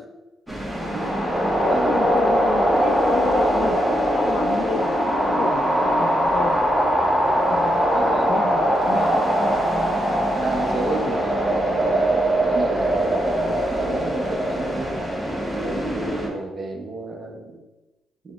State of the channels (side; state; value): both; normal; correlation 0.82